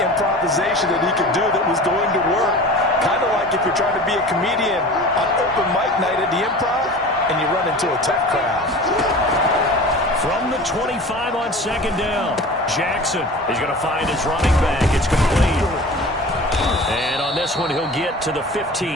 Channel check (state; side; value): normal; both; correlation 0.38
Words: that he could do that was going to work. Kind of like if you're trying to be a comedian on open mic night at the Improv and you run into a tough crowd. From the 25 on 2nd down, Jackson is going to find his running back. It's complete. And on this one, he'll get to the